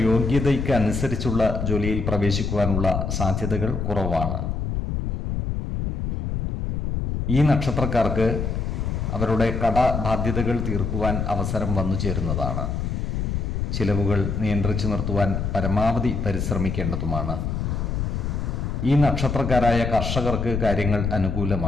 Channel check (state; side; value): noise; left; rumble, 2 dB below the sound